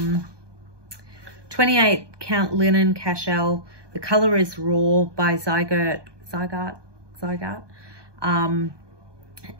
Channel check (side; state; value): left; late; 1.2 ms